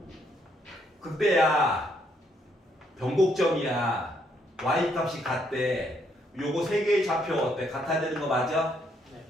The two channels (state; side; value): normal; both; correlation 0.72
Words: 극대야. 변곡점이야. y값이 같대. 요거 세 개의 좌표 어때? 같아야 되는 거 맞아? 네.